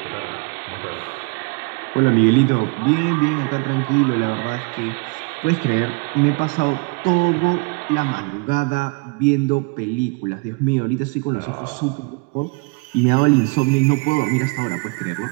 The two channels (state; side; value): quieter; left; 31.6 dB